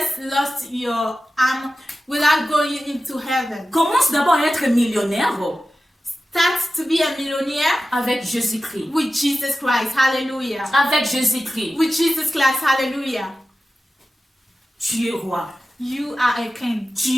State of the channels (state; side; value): normal; both; correlation 0.94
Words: lost your arm without going into heaven. Commence d'abord à être millionnaire Start to be a millionaire avec Jésus-Christ. with Jesus Christ. Hallelujah. Avec Jésus-Christ. With Jesus Christ. Hallelujah. Tu es roi. You are a king.